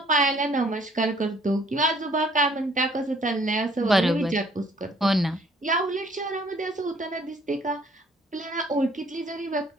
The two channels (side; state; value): both; normal; correlation 0.60